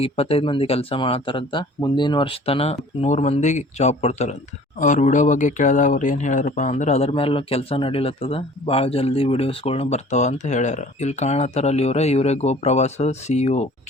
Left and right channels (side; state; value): both; normal; correlation 0.49